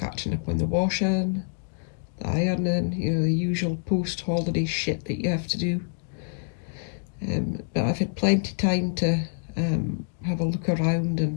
up on the washing, the ironing, the usual post-holiday shit that you have to do. But I've had plenty of time to have a look around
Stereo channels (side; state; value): right; silent; 61 dB below the other